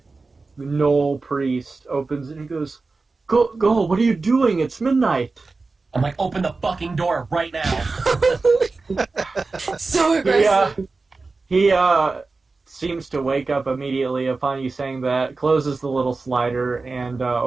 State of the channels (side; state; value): left; quieter; 3.8 dB